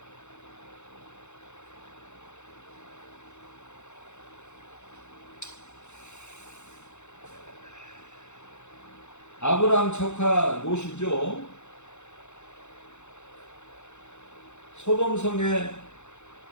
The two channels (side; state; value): right; late; 0.83 ms